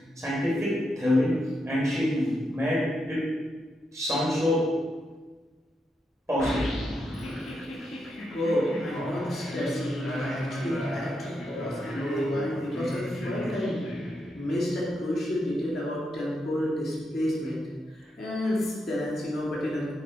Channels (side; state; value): both; normal; correlation 0.83